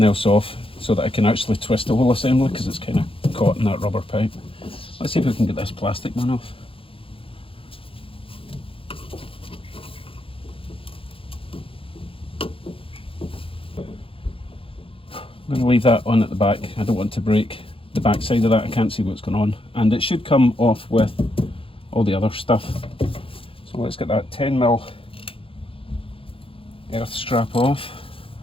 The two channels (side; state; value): right; late; 0.26 ms